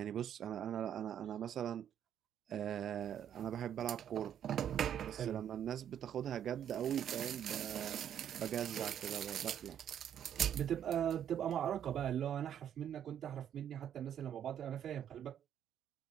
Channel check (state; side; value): quieter; left; 9.7 dB